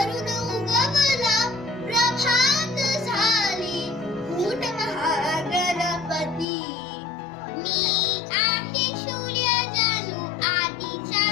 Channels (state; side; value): drops out; right; at 6.5 s